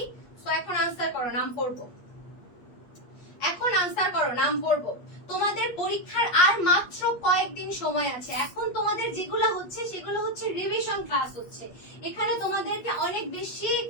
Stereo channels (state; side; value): late; right; 8.4 ms